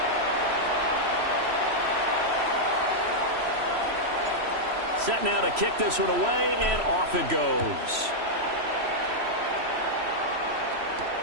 Set now to kick this one away, and off it goes.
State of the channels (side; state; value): left; late; 3.1 ms